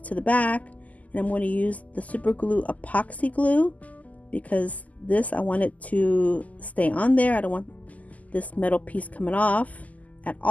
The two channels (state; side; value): late; right; 0.075 ms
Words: the back, and I'm going to use the super glue epoxy glue because this, I want it to stay on there. I don't want this metal piece coming off at